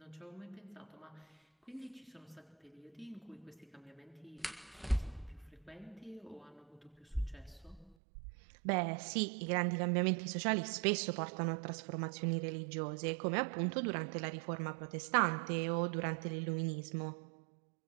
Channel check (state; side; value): drops out; left; at 8.0 s